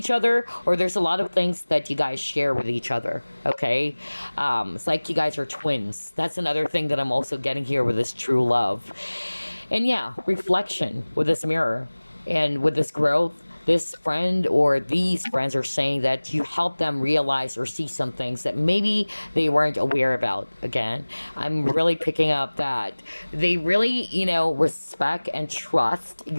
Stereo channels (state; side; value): inverted; both; correlation -1.00